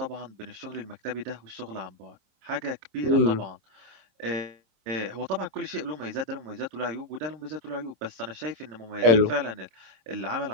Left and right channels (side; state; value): left; late; 27 ms